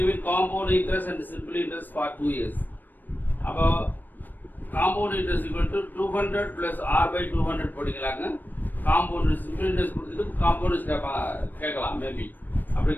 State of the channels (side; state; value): right; late; 0.089 ms